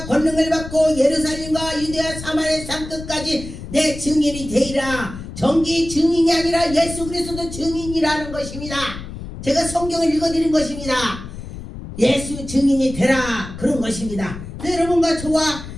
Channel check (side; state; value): left; noise; rumble, 11 dB below the sound